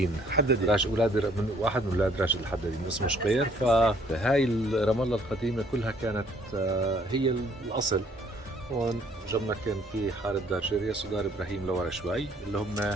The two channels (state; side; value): normal; both; correlation 0.62